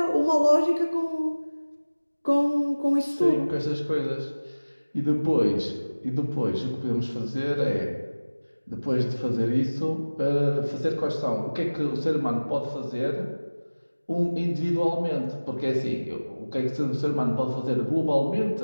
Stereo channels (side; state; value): both; inverted; correlation -1.00